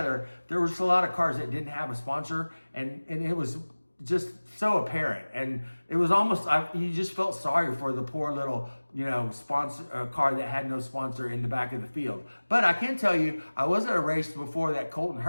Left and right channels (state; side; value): inverted; both; correlation -1.00